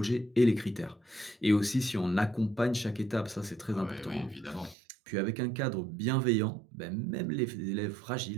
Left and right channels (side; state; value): left; drops out; at 4.8 s